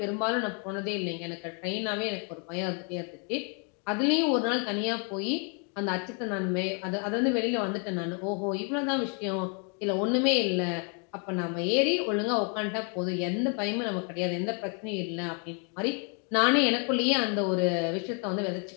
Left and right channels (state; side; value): quieter; right; 38.5 dB